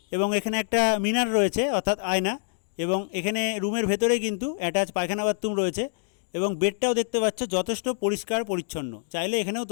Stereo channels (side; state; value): right; silent; digital silence